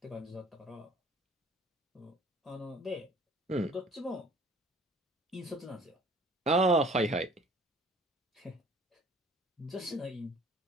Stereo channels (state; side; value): normal; both; correlation 0.51